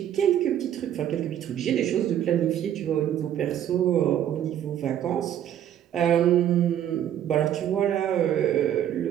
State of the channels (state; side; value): quieter; left; 10.6 dB